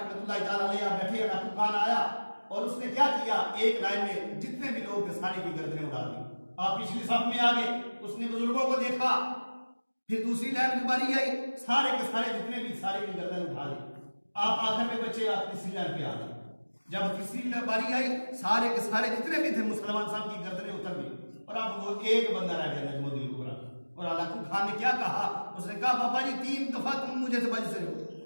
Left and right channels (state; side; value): inverted; both; correlation -1.00